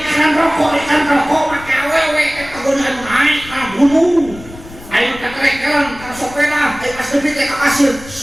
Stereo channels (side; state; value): left; noise; rumble, 17 dB below the sound